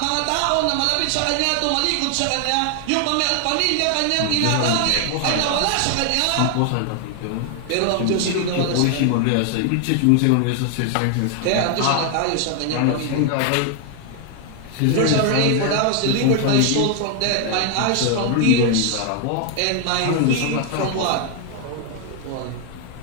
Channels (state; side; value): different; both; correlation 0.00